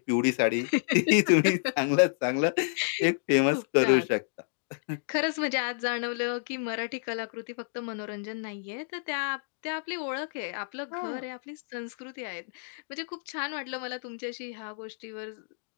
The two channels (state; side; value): silent; right; digital silence